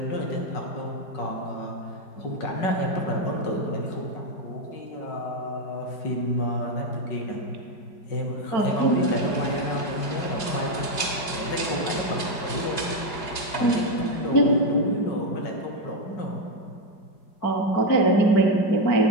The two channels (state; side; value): late; right; 4.8 ms